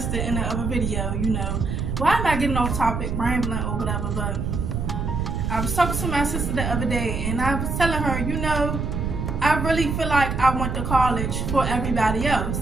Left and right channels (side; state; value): right; noise; rumble, 2 dB below the sound